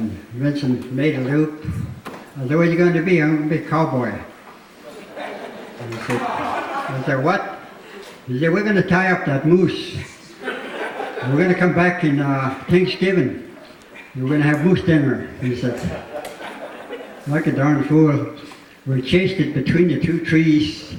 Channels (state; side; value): identical; both; correlation 1.00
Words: Vincent made a loop. I said, "What are you going to be?" "I'm going to be a cowboy." And I said, "What?" He said, "We're going to tie up that moose. And we're going to come back in Thanksgiving. We're going to have moose dinner." He said, like a darn fool. We chased it between the two trees.